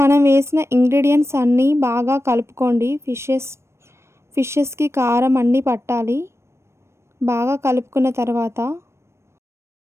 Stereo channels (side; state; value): left; late; 0.13 ms